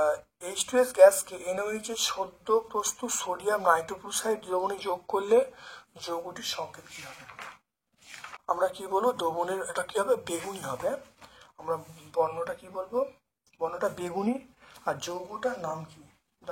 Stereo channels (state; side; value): identical; both; correlation 1.00